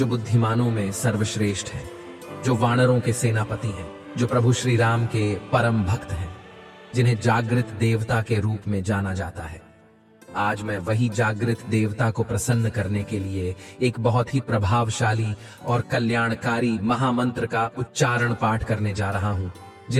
बुद्धिमानों में सर्वश्रेष्ठ है, जो वानरों के सेनापति हैं, जो प्रभु श्री राम के परम भक्त हैं, जिन्हें जागृत देवता के रूप में जाना जाता है। आज मैं वही जागृत देवता को प्रसन्न करने के लिए एक बहुत ही प्रभावशाली और कल्याणकारी महामंत्र का उच्चारण पाठ करने जा रहा हूं,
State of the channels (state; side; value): identical; both; correlation 1.00